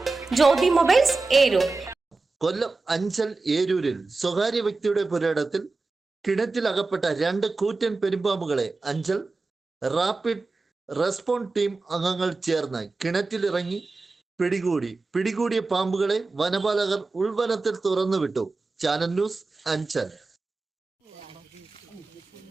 ജ്യോതി മൊബൈൽസ്, ഏരൂർ. കൊല്ലം അഞ്ചൽ ഏരൂരിൽ സ്വകാര്യ വ്യക്തിയുടെ പുരയിടത്തിൽ കിണറ്റിൽ അകപ്പെട്ട 2 കൂറ്റൻ പെരുമ്പാമ്പുകളെ അഞ്ചൽ റാപ്പിഡ് റെസ്പോൺസ് ടീം അംഗങ്ങൾ ചേർന്ന് കിണറ്റിലിറങ്ങി പിടികൂടിയ പാമ്പുകളെ വനപാലകർ ഉൾവനത്തിൽ തുറന്നുവിട്ടു. Channel news Anchal.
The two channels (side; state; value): left; quieter; 3.7 dB